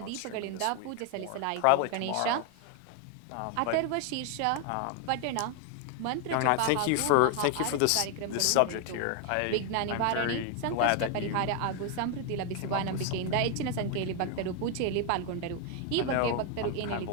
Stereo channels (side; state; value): both; different; correlation 0.01